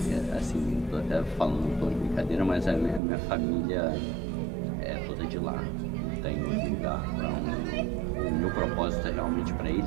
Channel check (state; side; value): drops out; left; at 3.0 s